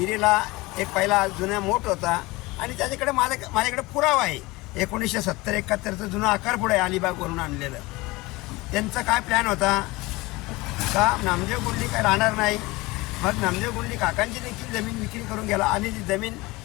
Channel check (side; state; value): right; quieter; 21.9 dB